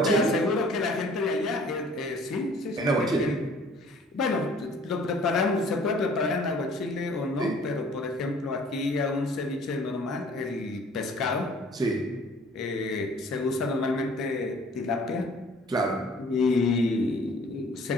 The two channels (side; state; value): both; normal; correlation 0.53